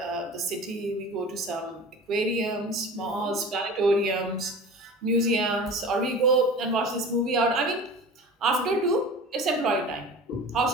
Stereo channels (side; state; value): both; normal; correlation 0.37